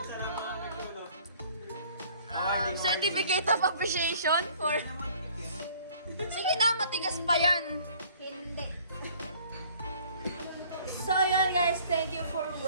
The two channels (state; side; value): inverted; both; correlation -0.54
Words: Certificate of appreciation for... Sige na, matigas pa yan. Hindi. So yun guys, thank you for